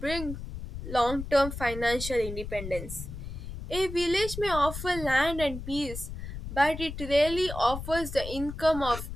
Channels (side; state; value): left; noise; rumble, 8 dB below the sound